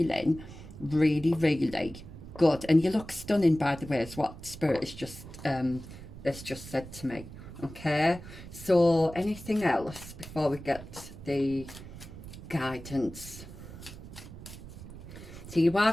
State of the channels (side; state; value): right; noise; rumble, 14 dB below the sound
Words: really, really good. And you look stunning, by the way, is what Spirit has just said to me. Okay, so anything else before we get the guidance? So you are